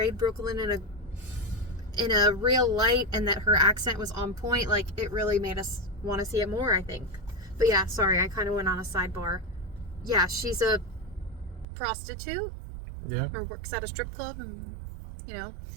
Brooklyn in a real light, and that her accent was on point. Like, it really made us want to see it more, I think. But yeah, sorry, I kind of went on a sidebar. Yeah, she's a prostitute. Yeah. Or works at a strip club, and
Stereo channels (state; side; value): drops out; left; at 11.7 s